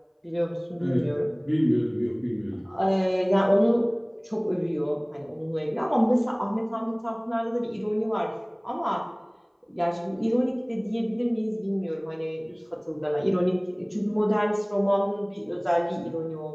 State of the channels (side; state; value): both; identical; correlation 1.00